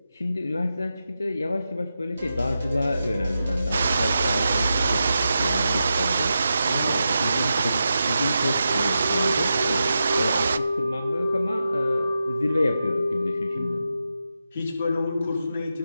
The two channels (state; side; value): inverted; both; correlation -0.89